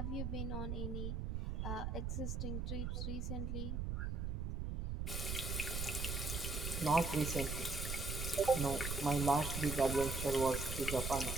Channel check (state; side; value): noise; right; rumble, 2 dB below the sound